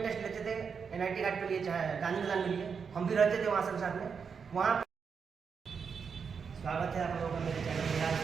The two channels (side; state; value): left; quieter; 6.1 dB